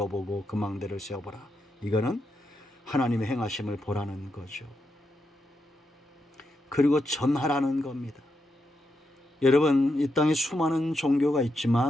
그 망대를 세어보라. 이거는 하나님의 행하심을 보라는 거죠. 그리고 전하라는 겁니다. 여러분, 이 땅에 수많은 종교가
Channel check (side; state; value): both; normal; correlation 0.84